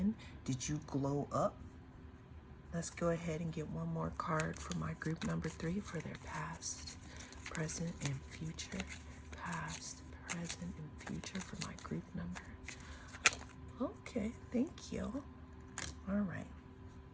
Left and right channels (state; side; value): identical; both; correlation 1.00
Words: Did you glow up? Let's go ahead and get one more card for my group number 3 for their past, present, and future. Past, present, and future for my group number. Okay, thank you. All right.